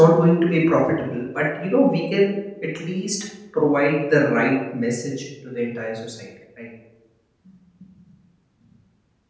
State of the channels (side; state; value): both; identical; correlation 1.00